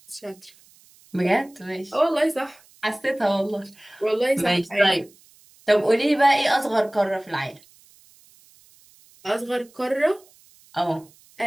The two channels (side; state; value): right; noise; hiss, 28 dB below the sound